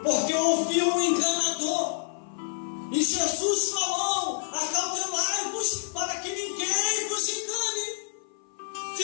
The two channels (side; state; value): right; silent; 56 dB below the other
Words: porque ouviu um enganador. E Jesus falou: acautelai-vos para que ninguém vos engane.